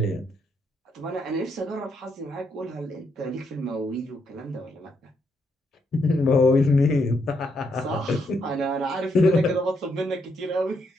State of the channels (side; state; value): both; normal; correlation 0.77